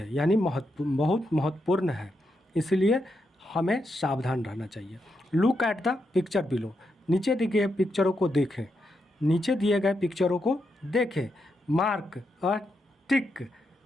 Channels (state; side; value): normal; both; correlation 0.83